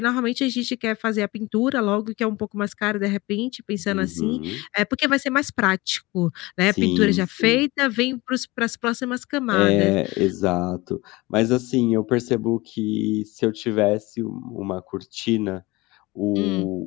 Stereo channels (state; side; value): quieter; right; 21.8 dB